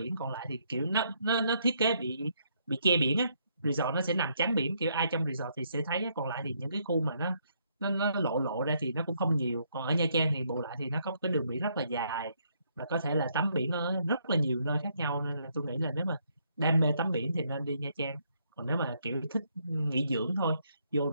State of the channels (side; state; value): both; inverted; correlation -0.72